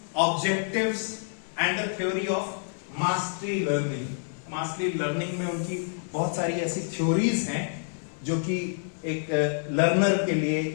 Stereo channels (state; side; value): silent; right; 60 dB below the other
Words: objectives and the theory of mastery learning. Mastery learning में उनकी बहुत सारी ऐसी थ्योरीज हैं जो कि एक लर्नर के लिए,